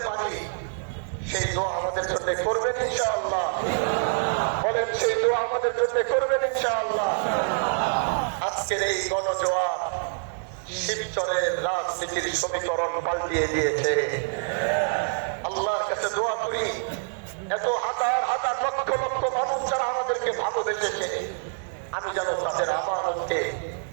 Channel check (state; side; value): silent; left; 60 dB below the other